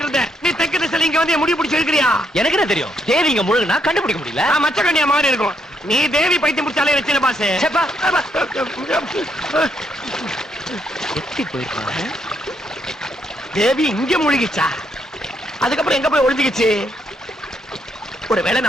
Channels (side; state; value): both; normal; correlation 0.76